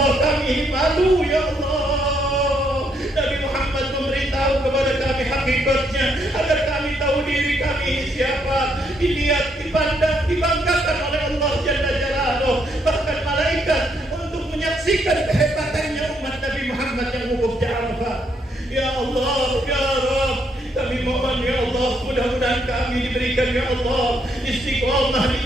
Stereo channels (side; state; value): both; normal; correlation 0.73